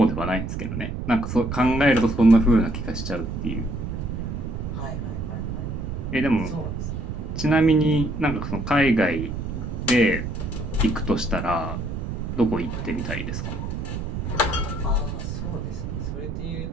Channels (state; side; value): noise; right; rumble, 5 dB below the sound